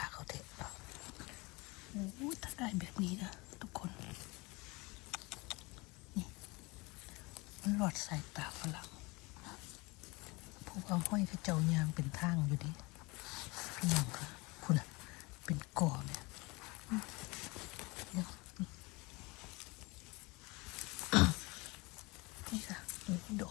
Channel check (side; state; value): right; quieter; 25.3 dB